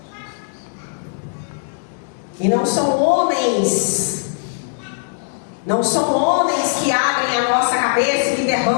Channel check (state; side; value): silent; right; digital silence